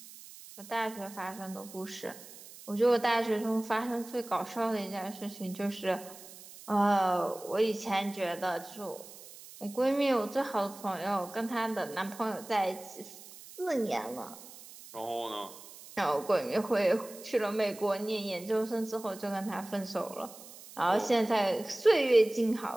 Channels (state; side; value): noise; right; hiss, 17 dB below the sound